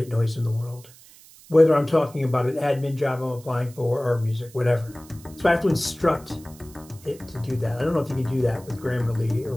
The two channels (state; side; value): noise; right; hiss, 23 dB below the sound